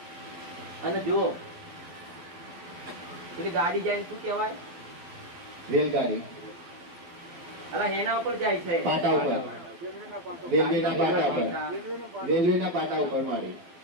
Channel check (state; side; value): late; left; 12 ms